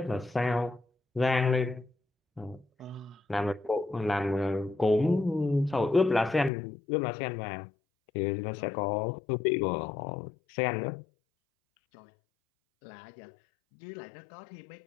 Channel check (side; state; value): right; drops out; at 6.5 s